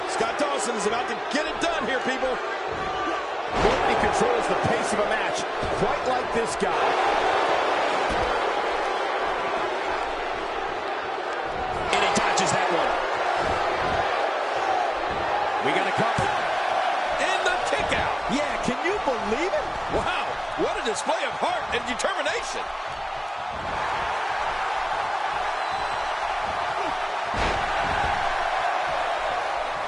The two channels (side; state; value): both; identical; correlation 1.00